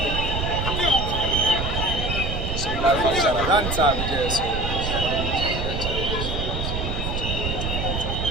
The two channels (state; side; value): noise; right; rumble, 2 dB below the sound